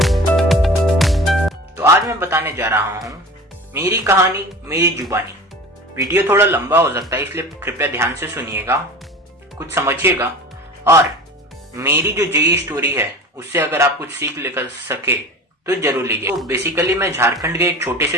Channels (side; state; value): both; normal; correlation 0.37